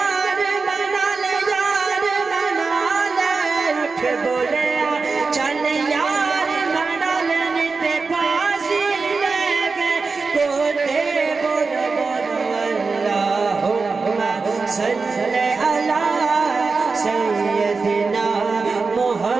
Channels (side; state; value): left; quieter; 4.4 dB